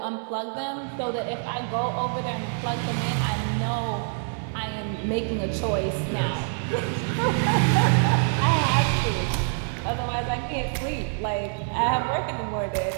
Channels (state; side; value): silent; left; 61 dB below the other